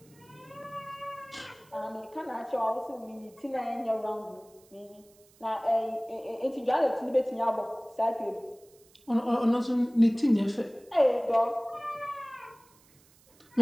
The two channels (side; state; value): right; noise; hiss, 29 dB below the sound